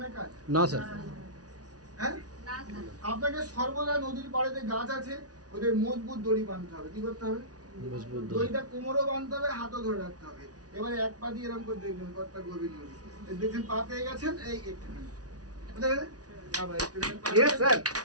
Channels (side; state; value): left; late; 0.68 ms